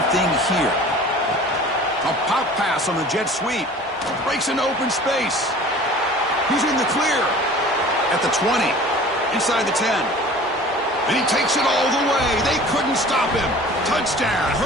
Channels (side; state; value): both; normal; correlation 0.44